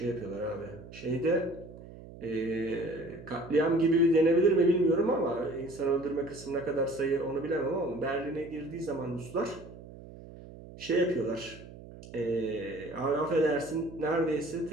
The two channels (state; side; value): noise; right; hum, 16 dB below the sound